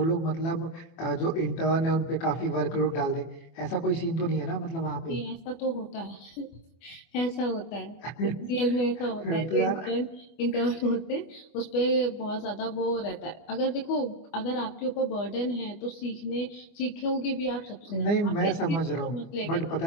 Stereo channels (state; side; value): late; right; 24 ms